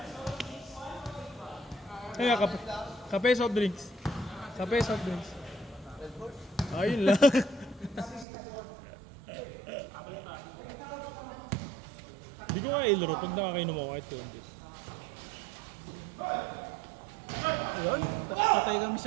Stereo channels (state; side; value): drops out; left; at 8.2 s